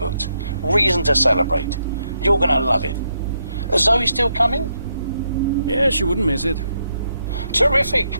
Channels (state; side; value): inverted; both; correlation -0.79